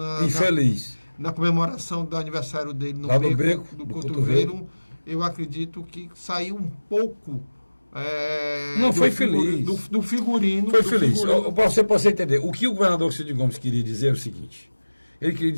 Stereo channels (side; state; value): both; inverted; correlation -1.00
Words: infeliz. Na comemoração do aniversário dele no beco do cotovelo, eu acredito que saiu um pouco... não, foi feliz. Do figurino. Foi feliz. Para você entender, o que o governador Cid Gomes queria dizer é o seguinte. Ele queria